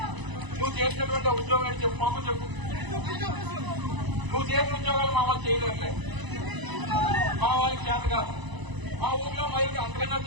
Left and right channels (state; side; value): late; left; 1.0 ms